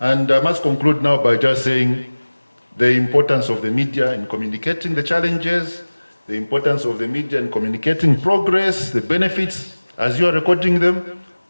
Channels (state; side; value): inverted; both; correlation -1.00